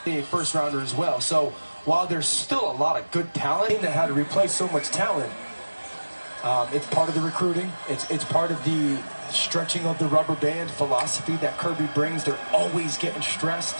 A first rounder as well. So while there's still a lot of good talent that had to replace so much talent, it's part of the recruiting. It's part of the stretching of the rubber band philosophy that Kirby brings. They're always getting stressed,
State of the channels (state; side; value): inverted; both; correlation -1.00